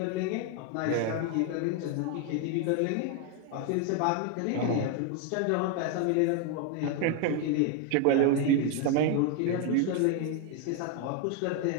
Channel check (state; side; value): different; both; correlation 0.01